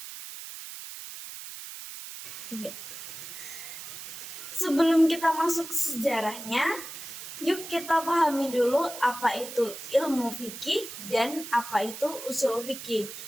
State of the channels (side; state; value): right; noise; hiss, 11 dB below the sound